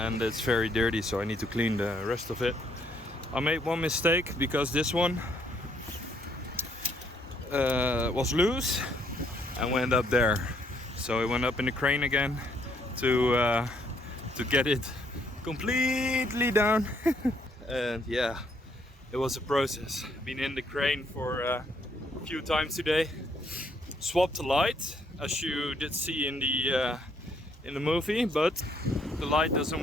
and it's very dirty, so I need to clean the rest of it. I made one mistake because this one was loose and went up there, so I went up in the crane again to get it completely down. And yeah, it was a process. Been in the crane for a few times today. Swapped the light, as you did see in the movie, but the light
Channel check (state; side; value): normal; both; correlation 0.69